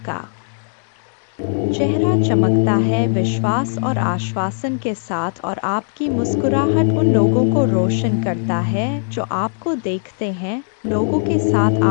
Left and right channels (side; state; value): right; silent; digital silence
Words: चेहरा चमकता है विश्वास और आश्वासन के साथ, और आपकी मुस्कुराहट उन लोगों को रोशन करता है जो आपको देखते हैं। लोगों के साथ